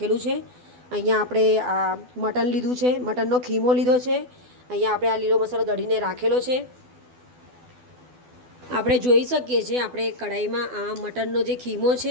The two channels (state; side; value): late; left; 12 ms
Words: છે. અહીંયા આપણે આ મટન લીધું છે, મટનનો ખીમો લીધો છે. અહીંયા આપણે આ લીલો મસાલો દળીને રાખેલો છે. આપણે જોઈ શકીએ છીએ આપણે કઢાઈમાં આ મટનનો જે ખીમો